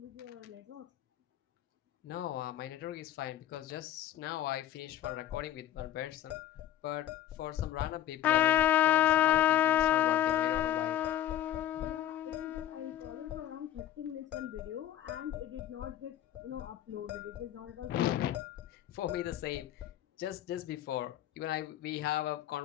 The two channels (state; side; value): quieter; right; 12.0 dB